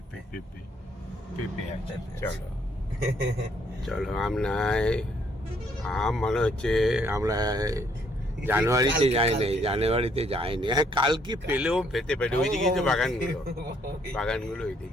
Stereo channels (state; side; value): normal; both; correlation 0.68